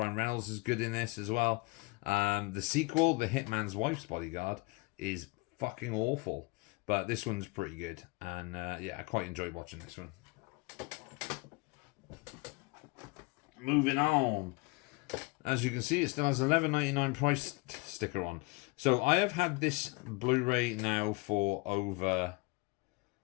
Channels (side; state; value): right; quieter; 26.1 dB